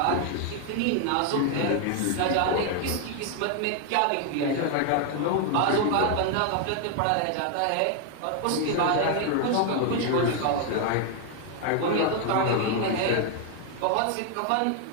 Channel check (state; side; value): different; both; correlation 0.00